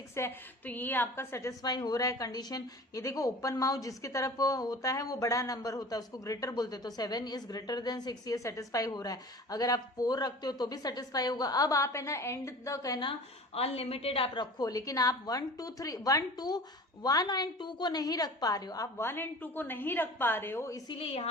है। तो ये आपका सेटिस्फाई हो रहा है कंडीशन। ये देखो ओपन माउथ जिसकी तरफ होता है वो बड़ा नंबर होता है, उसको ग्रेटर बोलते हैं। तो 7 इज ग्रेटर देन 6, ये सेटिस्फाई हो रहा है। अगर आप 4 रखते हो तो भी सेटिस्फाई होगा। अब आप है ना एंड तक है ना अनलिमिटेड आप रखो, लेकिन आप 1 2 3 1 एंड 2 को नहीं रख पा रहे हो, आप 1 एंड 2 को नहीं रख पा रहे हो, इसीलिए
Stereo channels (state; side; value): normal; both; correlation 0.40